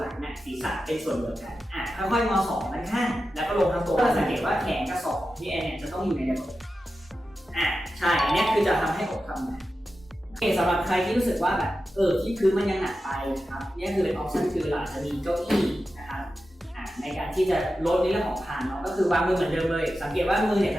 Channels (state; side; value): normal; both; correlation 0.92